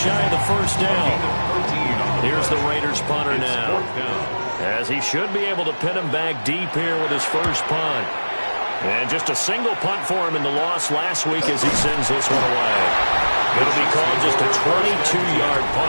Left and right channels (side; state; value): both; inverted; correlation -1.00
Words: of the 1st down. Here's the Raiders punter now, as he should be able to pin him back deep here with his first punt. And just a single punt for him in the loss last week as he sends this one away. It'll be called just a 22-yard